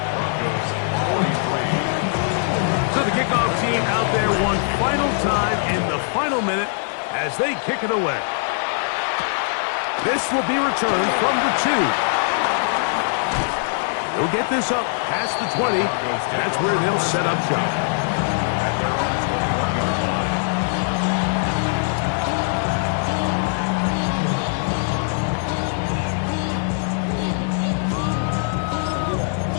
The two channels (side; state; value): right; silent; digital silence